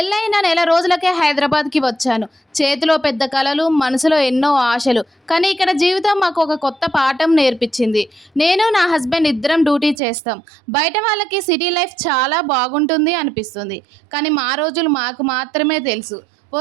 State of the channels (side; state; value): left; drops out; at 10.0 s